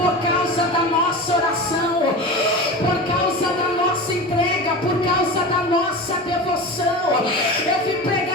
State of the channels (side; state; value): both; normal; correlation 0.29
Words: causa da nossa oração, por causa da nossa entrega, por causa da nossa devoção. Eu vim